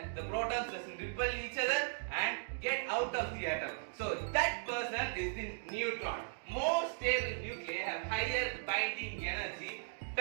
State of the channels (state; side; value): silent; left; digital silence